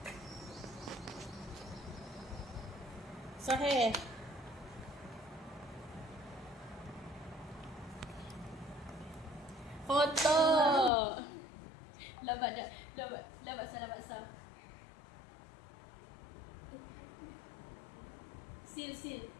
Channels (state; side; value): drops out; right; at 10.9 s